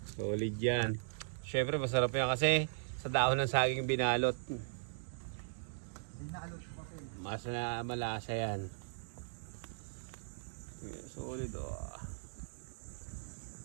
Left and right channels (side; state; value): left; silent; digital silence